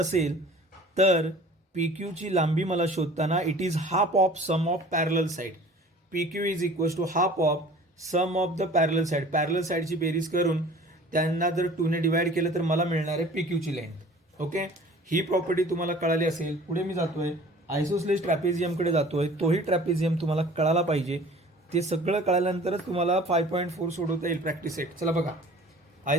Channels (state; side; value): normal; both; correlation 0.46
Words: तर PQ ची लांबी मला शोधताना it is half of sum of parallel side. PQ is equals to half of sum of the parallel side. Parallel साइडची बेरीज करून त्यांना जर 2 ने डिवाइड केलं तर मला मिळणार आहे PQ ची लेंथ. ओके, ही प्रॉपर्टी तुम्हाला कळाली असेल. पुढे मी जातोय आयसोसलेस ट्रॅपेझियमकडे जातोय. तोही ट्रॅपेझियम तुम्हाला कळाला पाहिजे. ते सगळं कळाल्यानंतरच तुम्हाला 5.4 सोडवता येईल प्रॅक्टिस सेट. चला बघा,